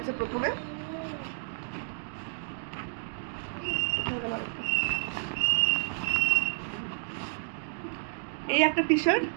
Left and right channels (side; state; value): left; silent; digital silence